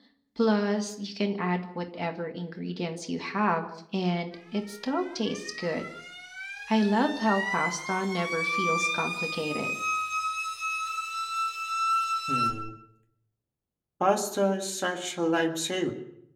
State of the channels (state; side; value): identical; both; correlation 1.00